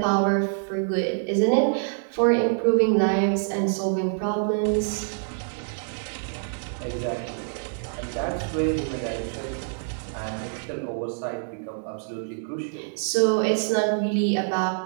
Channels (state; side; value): silent; left; digital silence